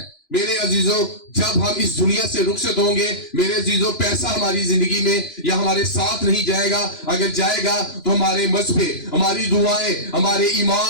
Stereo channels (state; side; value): late; right; 2.9 ms